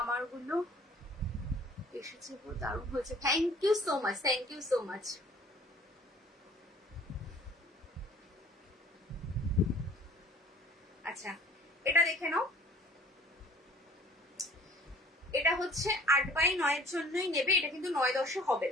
গুলো এসেছে, দারুণ হয়েছে, thank you so much, thank you so much. আচ্ছা, এটা দেখে নাও, এটা হচ্ছে 8x9 এর জন্যই নেবে, এটা কিন্তু 9-10 হবে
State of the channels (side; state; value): both; normal; correlation 0.52